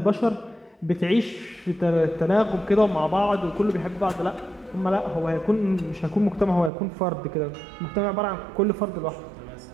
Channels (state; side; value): drops out; left; at 6.7 s